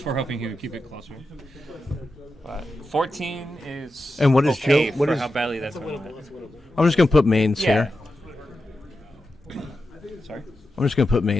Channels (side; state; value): both; normal; correlation 0.90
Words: were hoping he would keep it closer. But 14 is And what is okay Joe? What for is? how badly that's going. I'm just gonna put mains Yeah. here. Sorry. I'm just gonna put